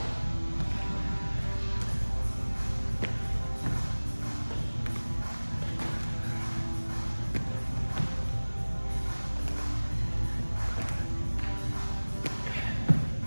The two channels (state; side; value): inverted; both; correlation -1.00